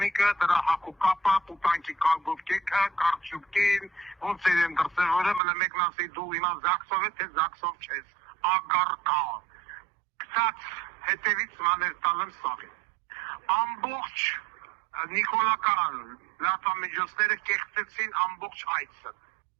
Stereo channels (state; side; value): drops out; left; at 5.4 s